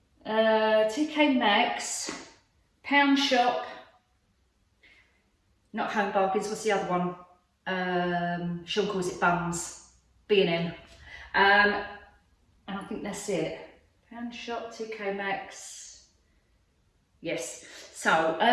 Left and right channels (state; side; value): identical; both; correlation 1.00